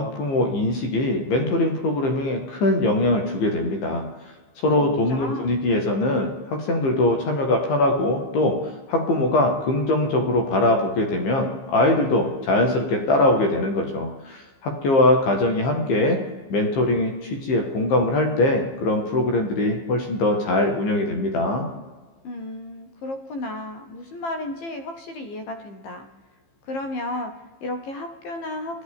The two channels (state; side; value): late; right; 15 ms